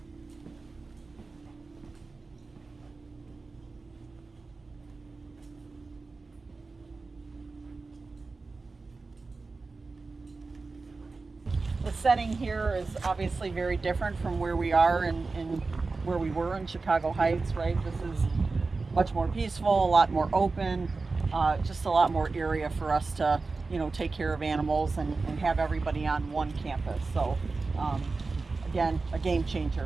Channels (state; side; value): quieter; left; 3.9 dB